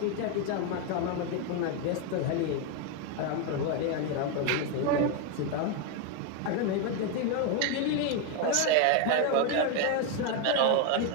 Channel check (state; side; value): different; both; correlation 0.01